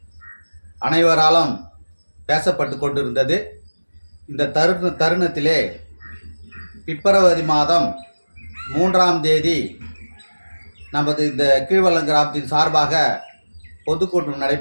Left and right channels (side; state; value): both; inverted; correlation -1.00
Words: அனைவராலும் பேசப்பட்டு கொண்டிருந்தது. இந்த தருணத்திலே பிப்ரவரி மாதம் 3ஆம் தேதி நமது இந்த கீழ்வல்லம் கிராமத்தின் சார்பாக பொதுக்கூட்டம்